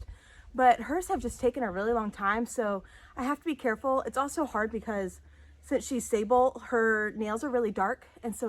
but hers have just taken a really long time. So I have to be careful. It's also hard because since she's sable, her nails are really dark. And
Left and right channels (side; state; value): both; identical; correlation 1.00